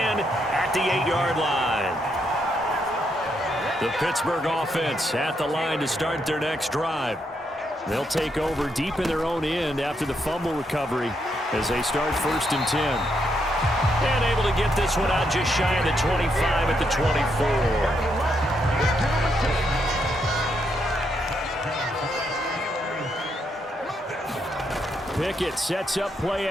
at the 8-yard line. The Pittsburgh offense at the line to start their next drive. They'll take over deep in their own end after the fumble recovery as they start 1st and 10. And able to get this one out just shy of the 25 at the 24. Pickett sets up play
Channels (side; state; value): both; normal; correlation 0.78